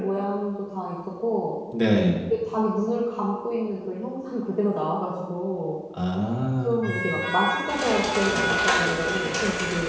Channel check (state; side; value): identical; both; correlation 1.00